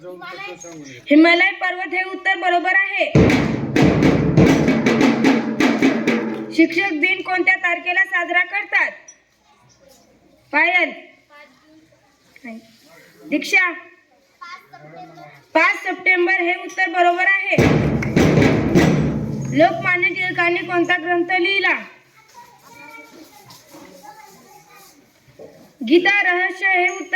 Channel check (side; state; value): both; identical; correlation 1.00